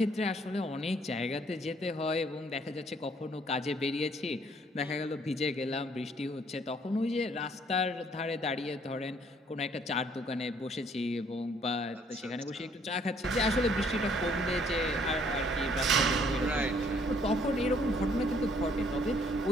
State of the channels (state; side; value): normal; both; correlation 0.64